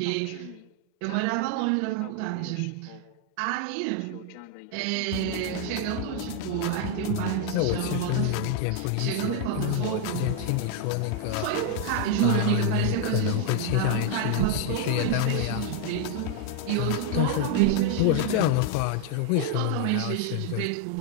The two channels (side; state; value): both; different; correlation 0.00